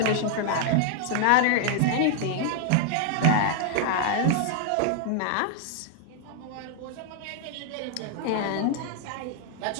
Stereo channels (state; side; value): different; both; correlation 0.00